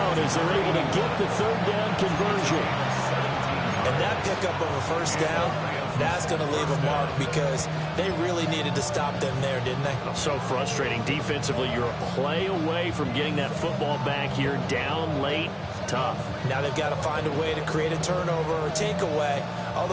as they're able to get the third down conversion. And that pickup of a first down, that's going to leave a mark because they really needed to stop them there, didn't they? So frustrating. Defensively, you're a play away from getting that football back here down late. Tough. Now they've got to find a way to create a turnover or takeaway.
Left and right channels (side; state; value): both; identical; correlation 1.00